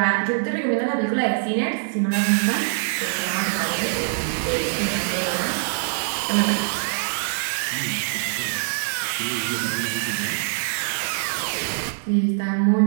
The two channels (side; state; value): left; silent; digital silence